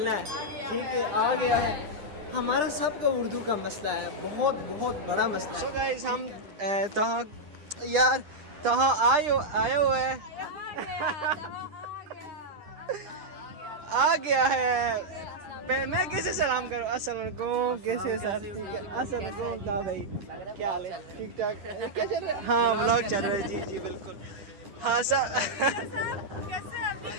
है। ठीक है, आ गया है। हमारा सबका उर्दू का मसला है, बहुत बहुत बड़ा मसला है। सो गाइस हम तहाँ आए हुए हैं। आ गया है। मैं कैसे सलाम करूँ? अस्सलाम वालेकुम। कैसे सर? अस्सलाम वालेकुम भाई, क्या हाल है? ठीक ठाक? क्या चल रहा है? हाँ व्लॉग चल रहा है। जी जी बिल्कुल। हाँ सर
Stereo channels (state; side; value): late; left; 9.9 ms